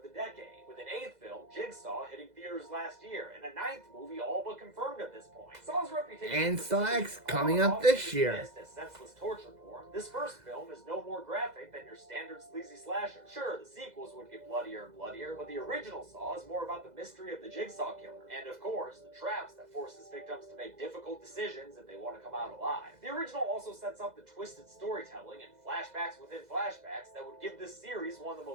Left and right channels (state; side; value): late; left; 2.0 ms